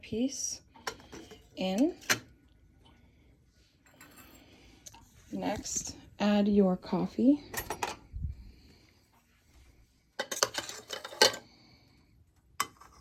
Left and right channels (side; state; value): both; identical; correlation 1.00